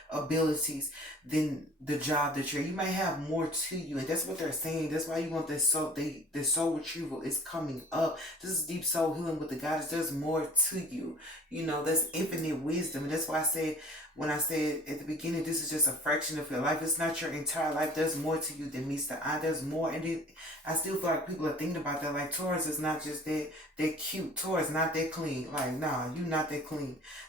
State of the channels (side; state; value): both; normal; correlation 0.48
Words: abilities than the job that you may have more to you. And that's what they're saying. That's why you want this soul, the soul retrieval is coming up. This is deep soul healing with the goddess. There's more to you. You know, that's infinite wisdom. And that's why I said, when I said at the beginning, this is just a fraction of your life. It's not your entire life. There's more to you than meets the eye. There's more. And I still feel like people are thinking about that. Like Taurus is not just that cute. Taurus not that clean. Like, nah, you're not that clean.